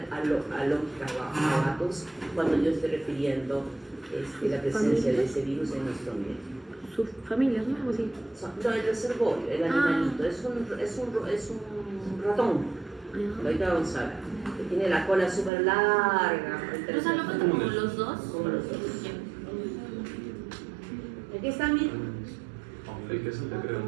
alópicos cuando yo estoy refiriendo la presencia de ese virus en nuestro ambiente. Sus familias, ¿no? Algo así. No, el reservorio, el animalito, es un ratón. Ahorita vamos a ver, que tiene la cola súper larga. O sea, lo cuento como los dos. Como los dos. Aquí están, miren.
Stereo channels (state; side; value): drops out; left; at 15.5 s